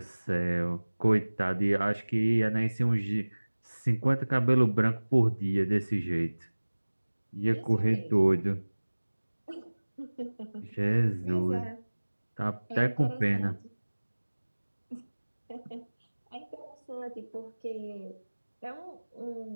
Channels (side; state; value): both; inverted; correlation -1.00